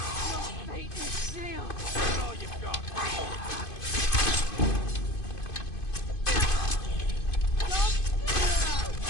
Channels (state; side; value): late; right; 2.5 ms